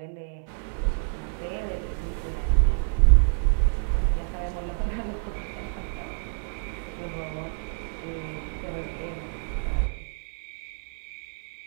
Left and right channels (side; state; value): left; silent; digital silence